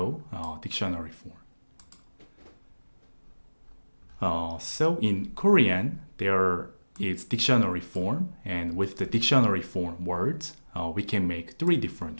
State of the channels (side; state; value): both; inverted; correlation -1.00